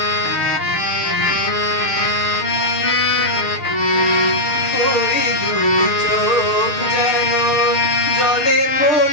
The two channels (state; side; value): late; right; 6.7 ms